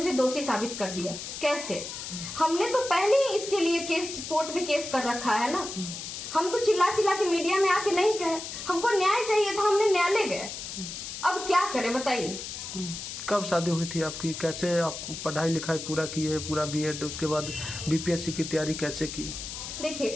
दोषी साबित कर दिया। कैसे? हमने तो पहले ही इसके लिए केस कोर्ट में केस कर रखा है ना। हम तो चिल्ला चिल्ला के मीडिया में आके नहीं कहे, हमको न्याय चाहिए था, हमने न्यायालय गए। अब क्या करें बताइए। कब शादी हुई थी आपकी? कैसे आप पढ़ाई लिखाई पूरा की है, पूरा बीएड, उसके बाद बीपीएससी की तैयारी कैसे की?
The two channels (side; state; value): left; noise; hiss, 8 dB below the sound